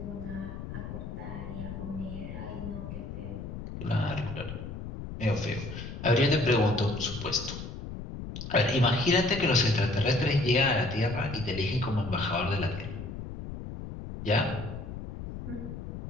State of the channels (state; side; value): noise; left; rumble, 8 dB below the sound